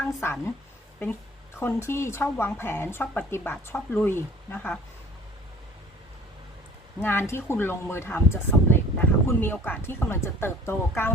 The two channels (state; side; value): normal; both; correlation 0.50